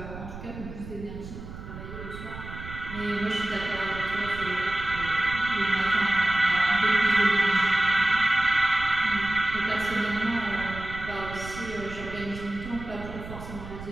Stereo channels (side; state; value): right; noise; rumble, 12 dB below the sound